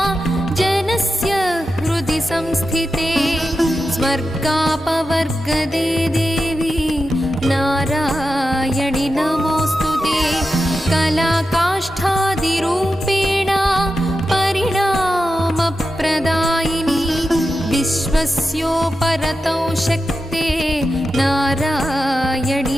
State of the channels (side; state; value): both; normal; correlation 0.90